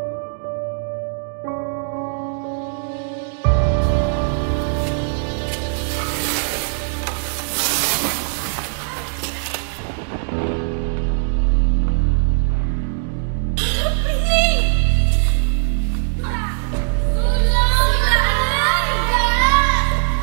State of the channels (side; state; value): left; silent; digital silence